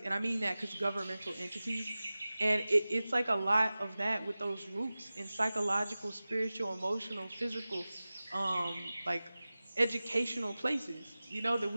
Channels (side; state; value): both; inverted; correlation -0.97